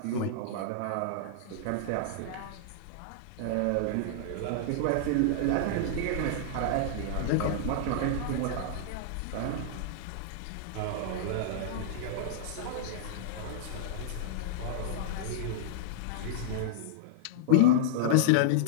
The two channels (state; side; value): different; both; correlation -0.02